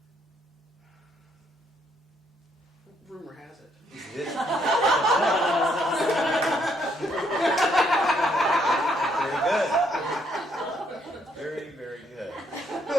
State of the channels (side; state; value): both; normal; correlation 0.71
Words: Rumor has it. Is this? Very good. Very, very good.